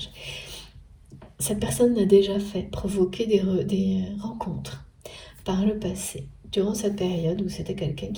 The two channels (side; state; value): both; identical; correlation 1.00